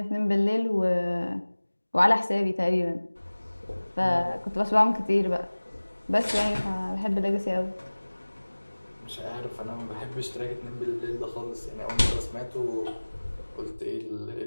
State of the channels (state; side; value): inverted; both; correlation -1.00